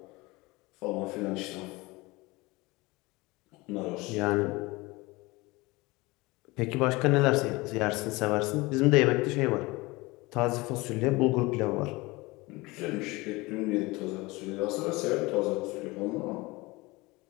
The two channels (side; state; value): right; quieter; 22.8 dB